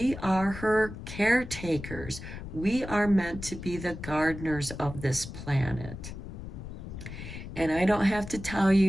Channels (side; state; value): left; noise; rumble, 10 dB below the sound